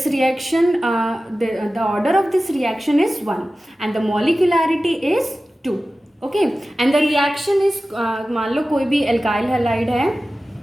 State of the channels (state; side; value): normal; both; correlation 0.95